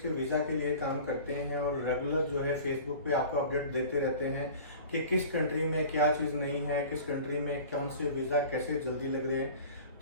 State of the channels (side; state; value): both; inverted; correlation -0.41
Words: के वीज़ा के लिए काम करते हैं और रेगुलर जो है फेसबुक पे आपको अपडेट देते रहते हैं कि किस कंट्री में क्या चीज़ नहीं है, किस कंट्री में कौन से वीज़ा कैसे जल्दी लग रहे हैं।